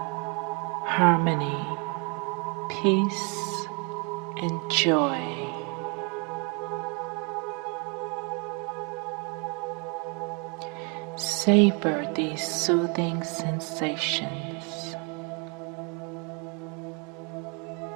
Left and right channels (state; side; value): quieter; left; 33.6 dB